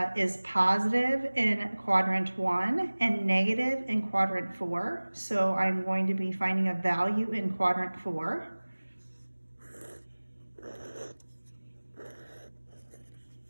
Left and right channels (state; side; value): inverted; both; correlation -1.00